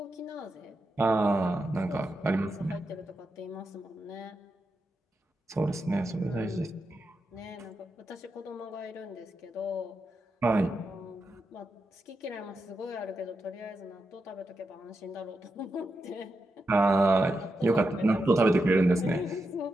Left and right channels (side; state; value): both; normal; correlation 0.87